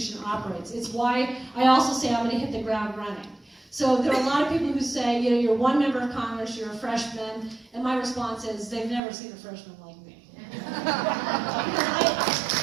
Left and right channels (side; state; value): left; drops out; at 9.0 s